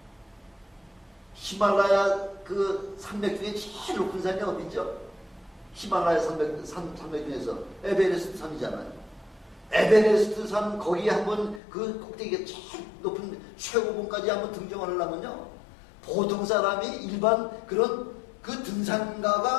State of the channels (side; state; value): right; drops out; at 11.6 s